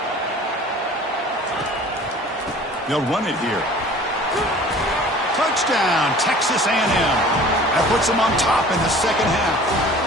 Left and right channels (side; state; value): both; normal; correlation 0.46